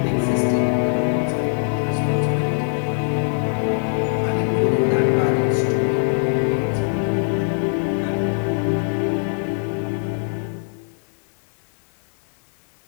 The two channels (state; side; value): silent; right; 63 dB below the other